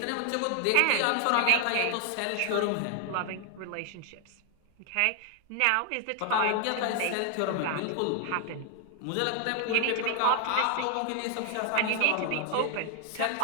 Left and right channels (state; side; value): different; both; correlation 0.00